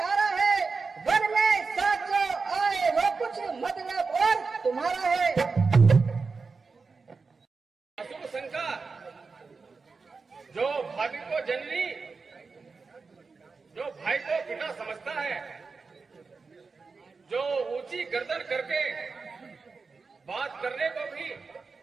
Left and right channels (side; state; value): left; quieter; 4.5 dB